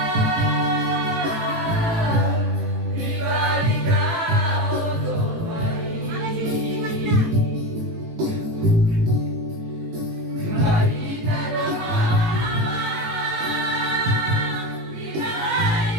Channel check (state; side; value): late; left; 18 ms